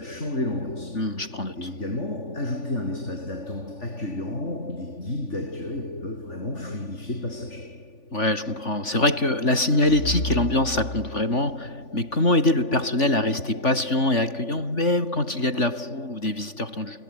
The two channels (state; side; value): late; right; 3.5 ms